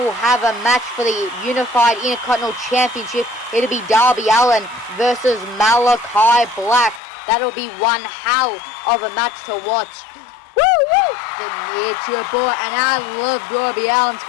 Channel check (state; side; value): drops out; right; at 7.0 s